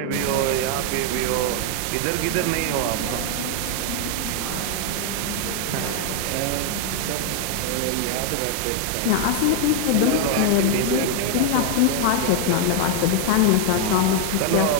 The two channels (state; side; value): different; both; correlation 0.00